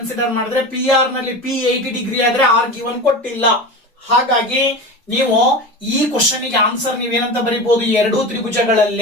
ಮಾಡಿದ್ರೆ, PR ನಲ್ಲಿ P 80 ಡಿಗ್ರಿ ಆದ್ರೆ R ಗಿವನ್ ಕೊಟ್ಟಿಲ್ಲ. ಹಾಗಾಗಿ ನೀವು ಈ ಕ್ವಶನ್ ಗೆ ಆನ್ಸರ್ ನೀವೇನಂತ ಬರೀಬಹುದು, ಎರಡೂ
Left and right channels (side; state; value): both; normal; correlation 0.28